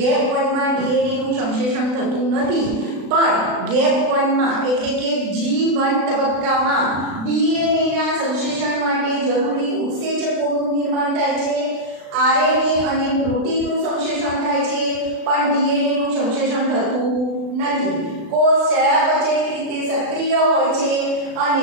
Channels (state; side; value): late; left; 36 ms